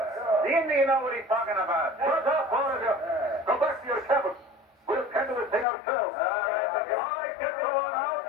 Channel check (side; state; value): right; drops out; at 5.7 s